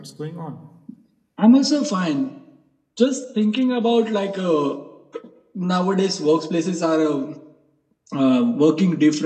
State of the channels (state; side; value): identical; both; correlation 1.00